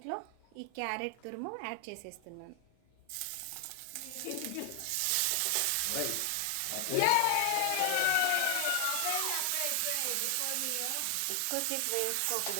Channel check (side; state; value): both; different; correlation 0.00